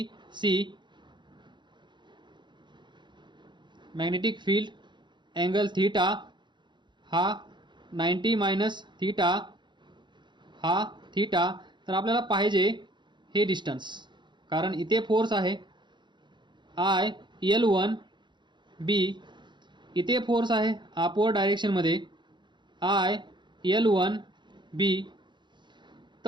magnetic field angle theta हा 90 मायनस थीटा, हा थीटा. तर आपल्याला पाहिजे हे डिस्टन्स, कारण इथे फोर्स आहे IL1B, इथे फोर्स आहे अपवर्ड डायरेक्शनमध्ये IL1B.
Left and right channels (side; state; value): left; late; 0.22 ms